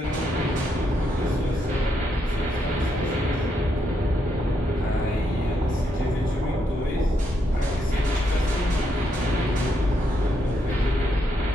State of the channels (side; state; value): both; normal; correlation 0.78